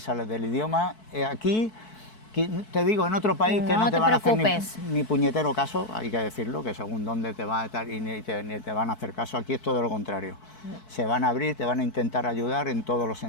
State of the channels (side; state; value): right; late; 4.6 ms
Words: es la del idioma. Aquí, te digo, en otro país que No no te te van a hacer preocupes. ni puñetero caso, hay que decirlo, que según dónde te va a estar y ni te van a hacer caso. Aquí es todo lo contrario. Se van a abrir, te van a intentar ayudar en todos los